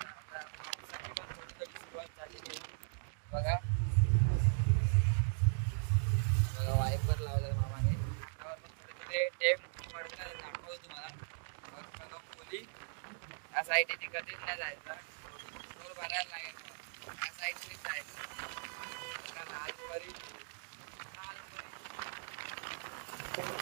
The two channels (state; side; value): silent; left; digital silence